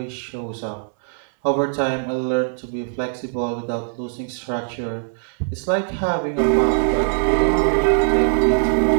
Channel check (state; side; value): silent; left; digital silence